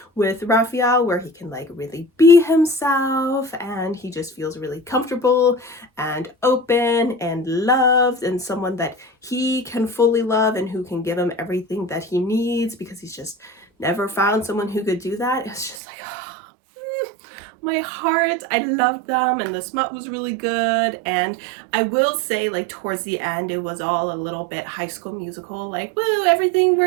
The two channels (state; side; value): drops out; left; at 15.8 s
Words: with Raphael where he can like really be himself, and he just feels really comfortable and open and loved, and someone that he can fully love and who can give him everything that he needs, because he's just never found someone who could do that. It's just like, my heart. I loved them, and the smut was really good. And I will say, like, towards the end, it was all a little bit High School Musical, like, woo, everything